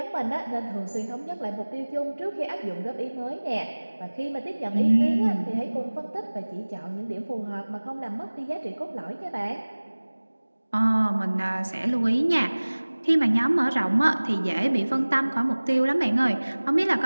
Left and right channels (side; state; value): both; inverted; correlation -1.00